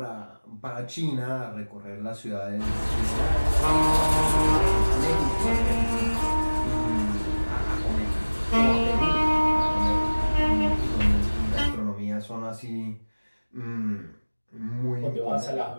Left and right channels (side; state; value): both; inverted; correlation -1.00